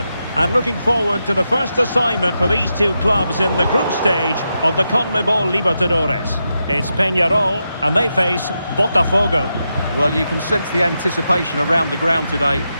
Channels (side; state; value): both; inverted; correlation -0.86